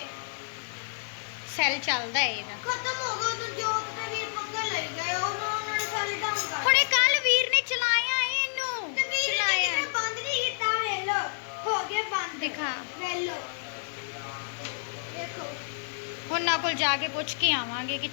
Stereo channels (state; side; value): silent; right; 58 dB below the other